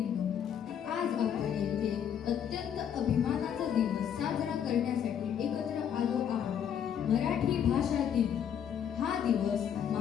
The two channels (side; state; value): right; quieter; 8.8 dB